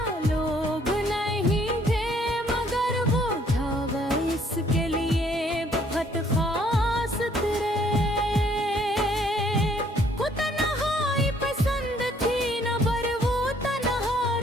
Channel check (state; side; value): normal; both; correlation 0.63